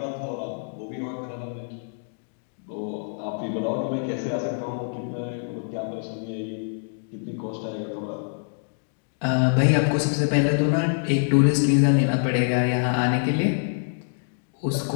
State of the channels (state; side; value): silent; right; digital silence